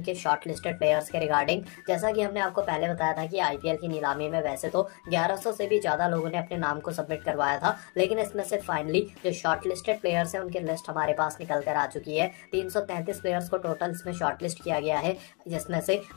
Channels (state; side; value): quieter; right; 33.5 dB